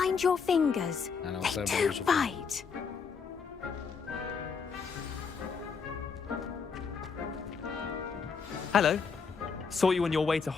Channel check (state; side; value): quieter; right; 5.7 dB